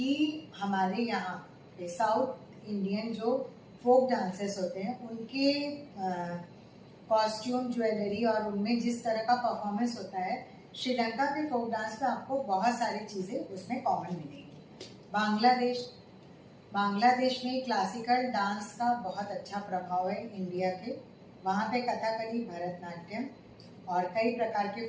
हमारे यहाँ पे साउथ इंडियन जो फोक डांसेस होते हैं उनके कॉस्ट्यूम, ज्वेलरी और उनमें जिस तरह का परफॉर्मेंस होता है, श्रीलंका के फोक डांस में आपको बहुत सारी चीज़ें उसमें कॉमन मिलेंगी। बांग्लादेश में क्लासिकल डांस का बहुत अच्छा प्रभाव है इंडिया के। वहाँ पे कथकली, भरतनाट्यम और कई प्रकार के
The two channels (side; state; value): both; identical; correlation 1.00